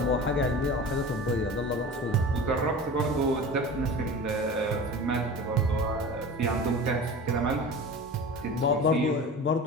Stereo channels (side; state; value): both; normal; correlation 0.35